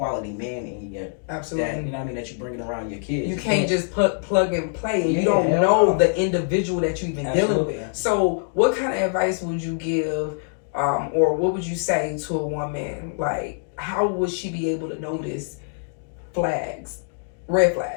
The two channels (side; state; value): right; silent; digital silence